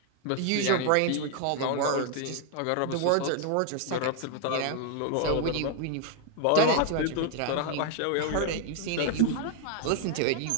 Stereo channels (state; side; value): different; both; correlation 0.00